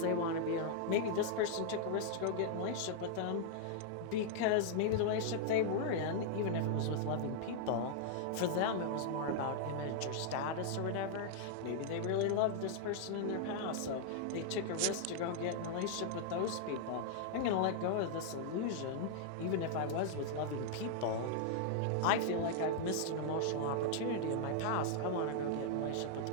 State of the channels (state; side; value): different; both; correlation -0.01